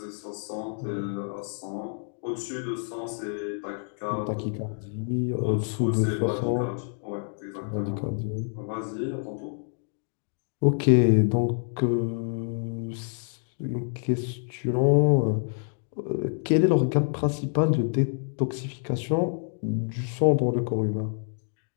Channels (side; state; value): right; silent; 60 dB below the other